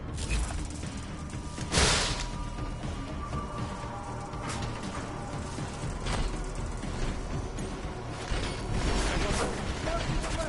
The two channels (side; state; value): both; identical; correlation 1.00